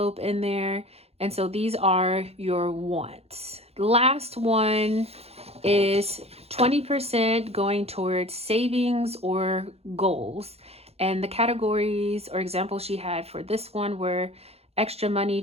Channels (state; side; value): late; left; 0.29 ms